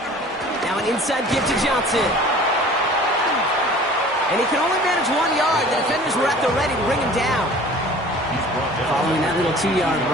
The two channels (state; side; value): normal; both; correlation 0.46